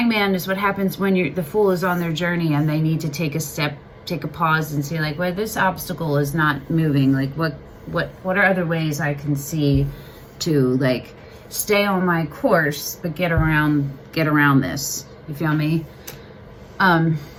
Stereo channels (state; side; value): identical; both; correlation 1.00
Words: is what happens when the Fool is on their journey and they need to take a step, take a pause and say like, well, this obstacle is not moving. Like what are other ways I can see to like stay on my course, but get around this. You feel me? And